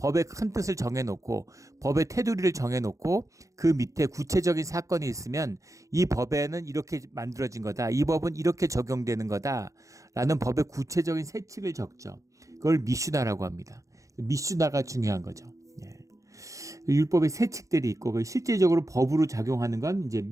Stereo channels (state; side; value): late; left; 0.15 ms